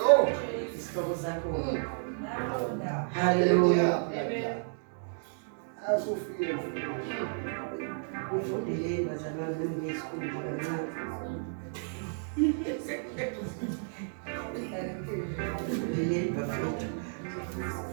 Isihloko sakho. Hallelujah. Asufike. Ufundele bazalwane nesikhulu kancane. Ufundele bafethu.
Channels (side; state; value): left; silent; digital silence